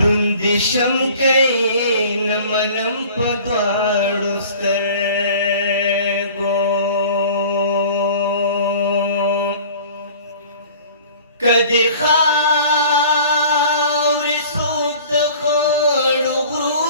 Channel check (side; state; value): both; inverted; correlation -0.46